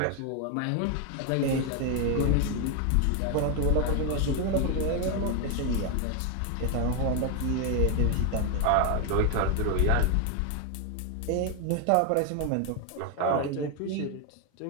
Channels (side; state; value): both; different; correlation 0.01